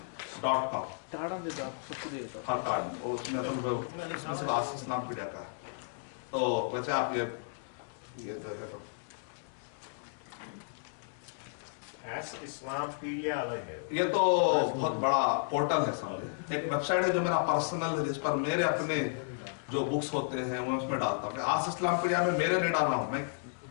ٹاڑا دے دو آپ سب کو دے دو. ہر کارڈ اس میں اصل آس اسلام پیڈیا کا ہے. تو ویسے آپ یہ جو ہے تو اسلام پیڈیا الگ ہے, یہ تو بہت بڑا پورٹل ہے سمجھے, ایک ویب سائٹ ہے جو میرا پرسنل ہے, جس پر میرے اپنے جو بکس ہوتے ہیں وہ اس میں ڈالتا ہوں. آس اسلام پیڈیا میں میرے نہیں ڈال رہا ہوں, میں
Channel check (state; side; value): silent; right; digital silence